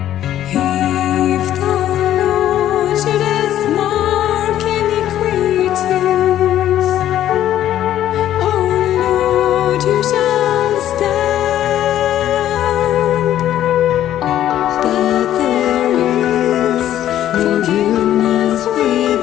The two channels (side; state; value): right; quieter; 12.0 dB